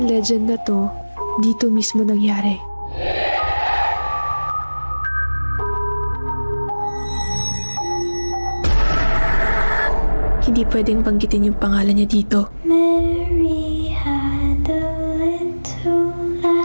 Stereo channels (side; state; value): both; inverted; correlation -1.00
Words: legend na to, dito mismo nangyari. Hindi pwedeng banggitin yung pangalan niya dito. Mary had a little